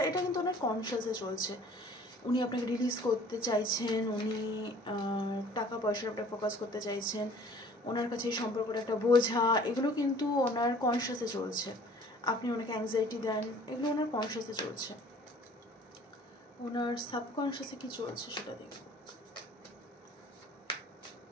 এটা কিন্তু ওনার কনশিয়াসে চলছে। উনি আপনাকে রিলিজ করতে চাইছেন, উনি টাকা পয়সার উপরে ফোকাস করতে চাইছেন, ওনার কাছে এই সম্পর্কটা একটা বোঝা, এগুলো কিন্তু ওনার কনশিয়াসে চলছে। আপনি ওনাকে অ্যাংজাইটি দেন, এগুলো ওনার কনশিয়াসে চলছে। ওনার সাবকনশিয়াসে কী চলছে সেটা দেখব।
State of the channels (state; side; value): normal; both; correlation 0.52